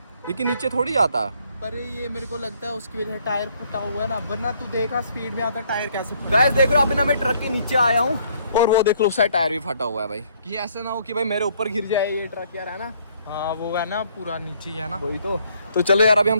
लेकिन नीचे थोड़ी जाता। पर ये मेरे को लगता है उसकी वजह से टायर फटा हुआ है ना, वरना तू देखा स्पीड में आता टायर कैसे। गाइस देख रहे हो, अभी ना मैं ट्रक के नीचे आया हूँ और वो देख लो उस साइड टायर भी फटा हुआ है भाई, कि ऐसा ना हो कि भाई मेरे ऊपर गिर जाए ये ट्रक यार, है ना। हाँ वो है ना पूरा नीचे ही है ना, वही तो चलो यार अभी हम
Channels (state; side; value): inverted; both; correlation -0.65